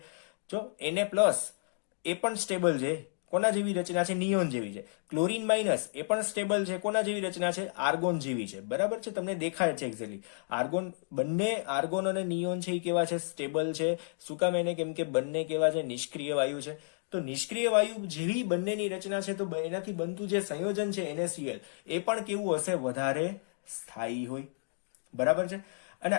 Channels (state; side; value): silent; right; digital silence